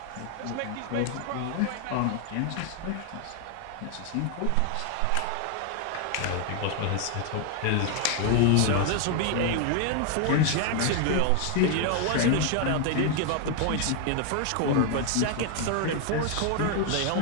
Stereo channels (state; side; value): different; both; correlation 0.01